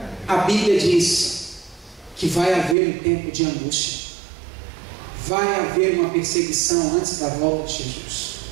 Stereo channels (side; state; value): left; drops out; at 2.8 s